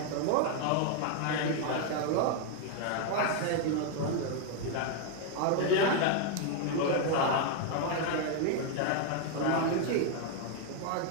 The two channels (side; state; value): both; different; correlation 0.00